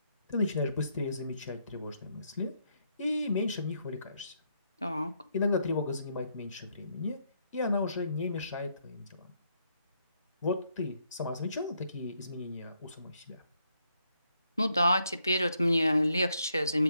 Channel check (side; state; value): both; inverted; correlation -0.76